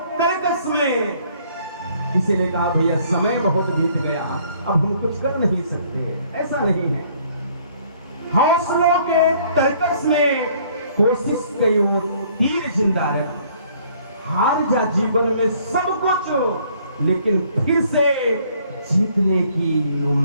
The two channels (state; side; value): inverted; both; correlation -0.61